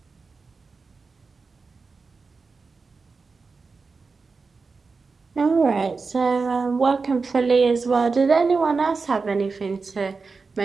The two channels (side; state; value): left; quieter; 4.4 dB